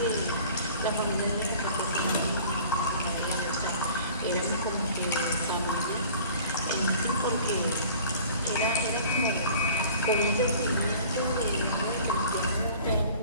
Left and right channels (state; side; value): inverted; both; correlation -0.47